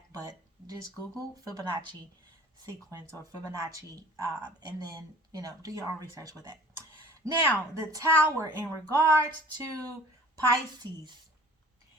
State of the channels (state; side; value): normal; both; correlation 0.47